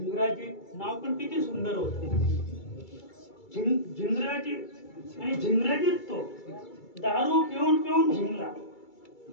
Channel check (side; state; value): right; late; 2.3 ms